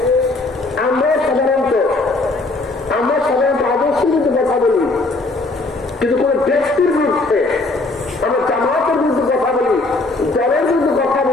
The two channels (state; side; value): quieter; right; 3.2 dB